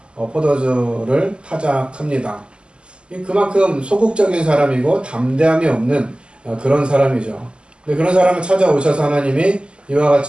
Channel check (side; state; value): left; late; 0.051 ms